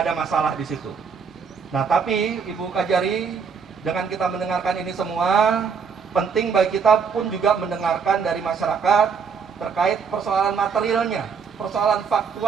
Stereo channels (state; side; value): quieter; left; 6.1 dB